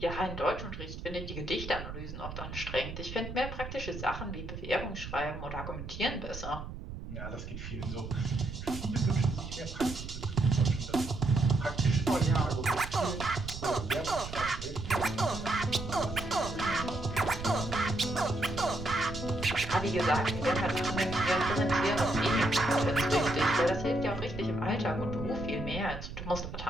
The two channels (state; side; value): noise; right; rumble, 9 dB below the sound